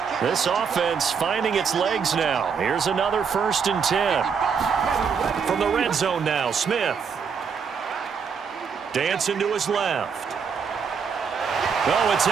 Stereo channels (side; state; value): left; quieter; 6.3 dB